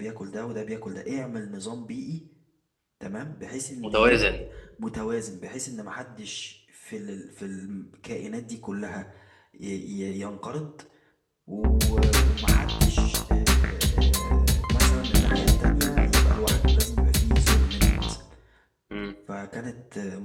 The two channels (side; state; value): both; identical; correlation 1.00